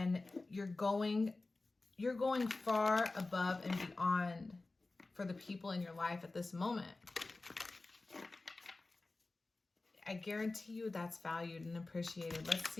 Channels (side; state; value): right; quieter; 3.3 dB